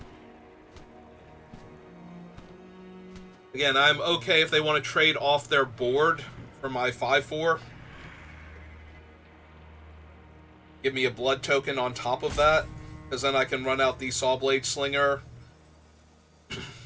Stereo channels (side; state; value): both; identical; correlation 1.00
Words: Again, I'm okay if they want to trade off their board for my 5/4. Give me a blood token on top of that. Because then I can run out the Sawblade Slinger.